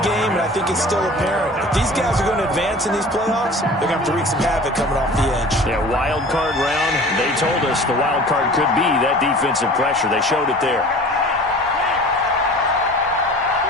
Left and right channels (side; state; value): both; normal; correlation 0.42